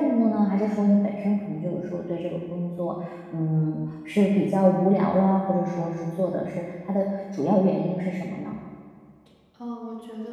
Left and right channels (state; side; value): identical; both; correlation 1.00